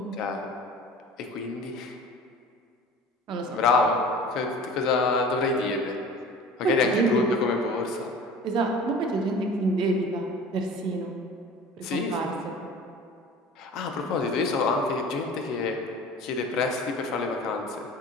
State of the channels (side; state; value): both; normal; correlation 0.41